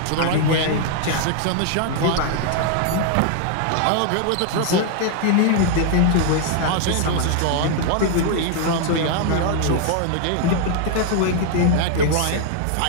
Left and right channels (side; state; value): both; different; correlation 0.00